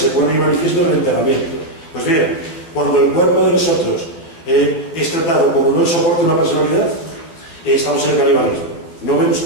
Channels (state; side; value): late; right; 12 ms